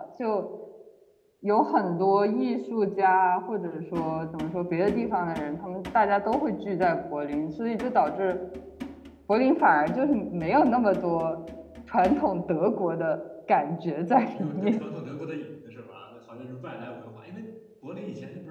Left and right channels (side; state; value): both; identical; correlation 1.00